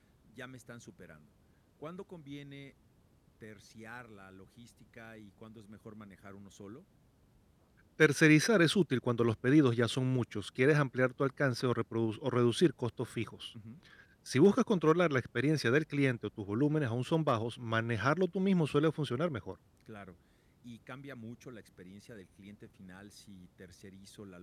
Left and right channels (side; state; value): both; identical; correlation 1.00